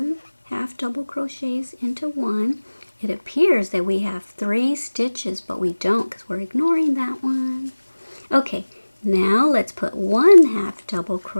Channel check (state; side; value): inverted; both; correlation -1.00